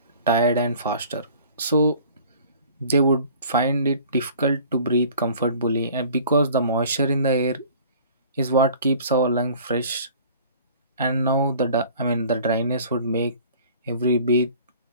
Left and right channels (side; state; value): both; inverted; correlation -0.49